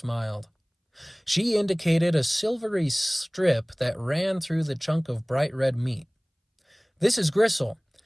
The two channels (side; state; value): both; identical; correlation 1.00